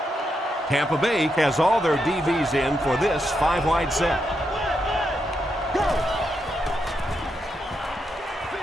Tampa Bay has all their DBs in for this 5-wide set.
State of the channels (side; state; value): both; normal; correlation 0.82